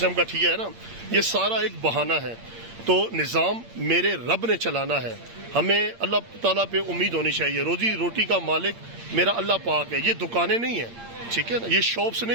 کا ٹھیا ہے نا, یہ سارا ایک بہانہ ہے. تو نظام میرے رب نے چلانا ہے. ہمیں اللہ تعالیٰ پہ امید ہونی چاہیے. روزی روٹی کا مالک میرا اللہ پاک ہے. یہ دکانیں نہیں ہیں, ٹھیک ہے نا, یہ شاپس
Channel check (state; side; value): late; left; 8.7 ms